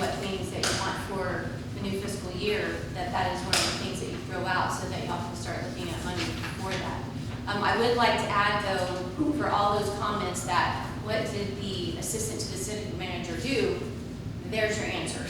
things that you want for the new fiscal year, that is one of the things that you throw out so that y'all can start looking at money for that. I would like to add though, for all those comments that what did the assistant to the city manager do, there's your answer.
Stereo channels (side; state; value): both; identical; correlation 1.00